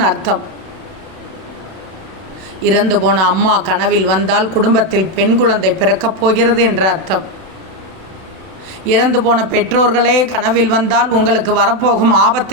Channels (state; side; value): late; left; 32 ms